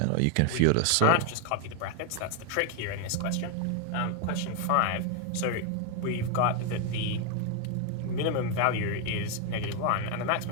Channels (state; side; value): different; both; correlation 0.01